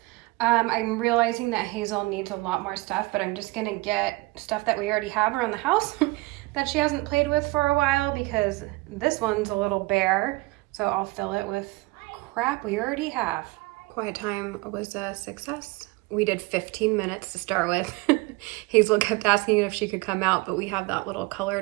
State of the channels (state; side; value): quieter; left; 23.1 dB